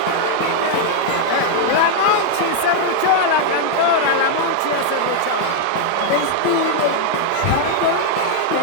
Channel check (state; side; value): different; both; correlation 0.00